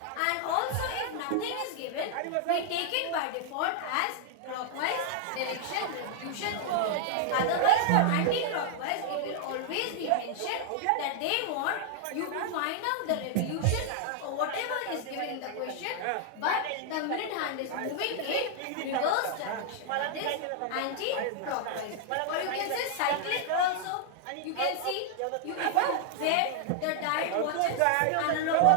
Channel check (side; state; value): both; different; correlation 0.00